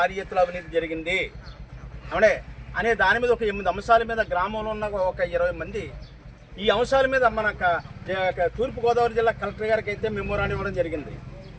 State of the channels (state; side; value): identical; both; correlation 1.00